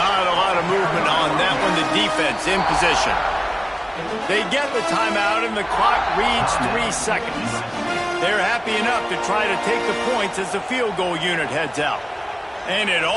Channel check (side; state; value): both; identical; correlation 1.00